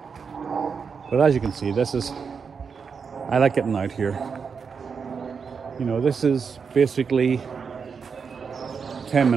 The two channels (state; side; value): quieter; left; 5.9 dB